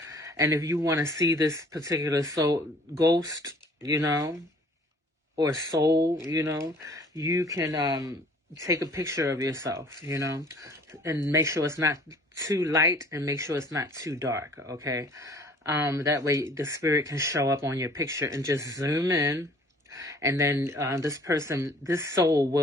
And if you want to see this particular ghost, you know, or soul, you know, you can take a picture of yourself, you know, and make sure it's not too light and make sure it's not too dark, okay? That way the spirit can show up on your picture, and just zoom in, and then this soul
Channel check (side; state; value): both; normal; correlation 0.53